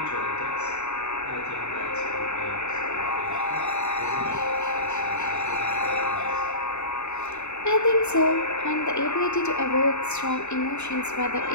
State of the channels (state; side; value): late; right; 0.82 ms